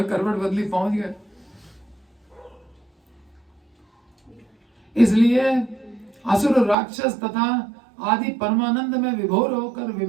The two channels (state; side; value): drops out; left; at 6.8 s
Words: करवट बदली, पहुंच गए। इसलिए असुर राक्षस तथा आदि परमानंद में विभोर होकर